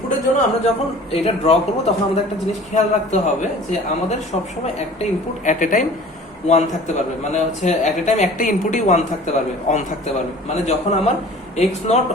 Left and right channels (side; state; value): both; normal; correlation 0.45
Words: জন্য আমরা যখন এটা ড্র করব তখন আমাদের একটা জিনিস খেয়াল রাখতে হবে যে আমাদের সবসময় একটা ইনপুট এট এ টাইম 1 থাকতে পারবে, মানে হচ্ছে এট এ টাইম একটা ইনপুটই 1 থাকতে পারবে, অন থাকতে পারবে। মানে যখন আমার x নট